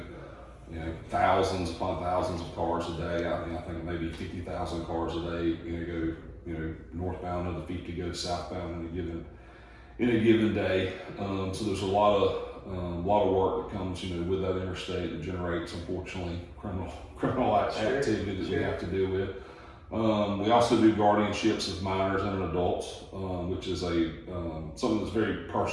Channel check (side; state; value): both; identical; correlation 1.00